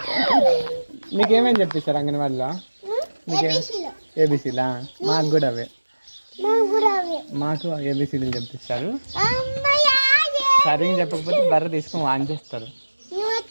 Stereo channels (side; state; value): both; inverted; correlation -1.00